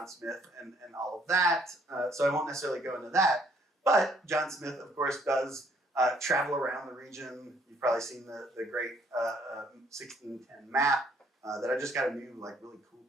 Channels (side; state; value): both; normal; correlation 0.65